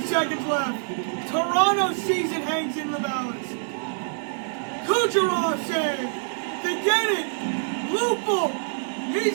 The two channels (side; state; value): left; silent; digital silence